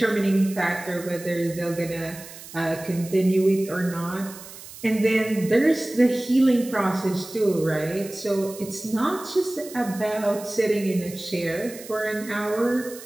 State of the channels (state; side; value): noise; right; hiss, 16 dB below the sound